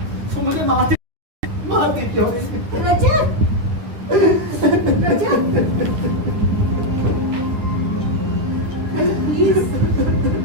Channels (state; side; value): late; left; 9.6 ms